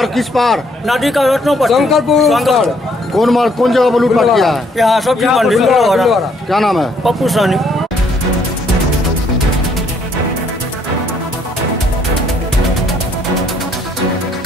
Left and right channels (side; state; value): both; normal; correlation 0.67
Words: किस पार? नदी का रत्नों पर शंकरपुर। कौन जगह पर लूटपाट किया है? यहाँ सब्जी मंडी। क्या नाम है? पप्पू सानी।